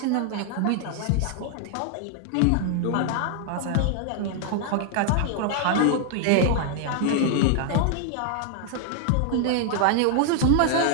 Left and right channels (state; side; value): different; both; correlation 0.00